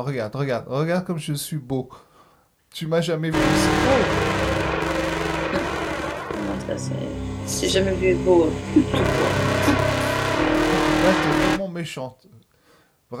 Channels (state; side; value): identical; both; correlation 1.00